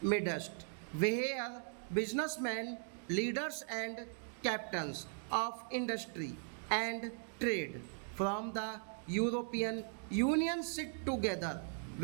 midst, where businessmen, leaders, and captains of industry and trade from the European Union sit together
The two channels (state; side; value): silent; left; 52 dB below the other